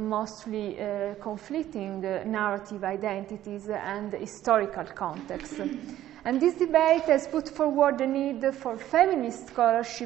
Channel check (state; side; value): quieter; left; 12.9 dB